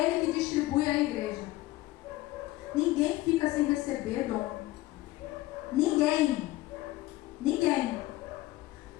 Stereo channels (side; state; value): right; quieter; 17.6 dB